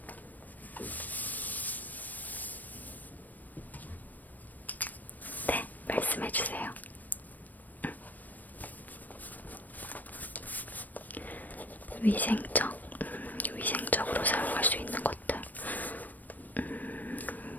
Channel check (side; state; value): right; late; 0.084 ms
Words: 네, 말씀해주세요. 위생적으로 사용할 수 있는 것들.